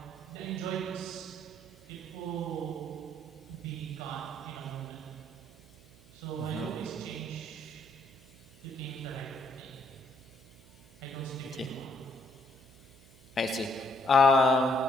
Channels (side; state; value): right; noise; hum, 23 dB below the sound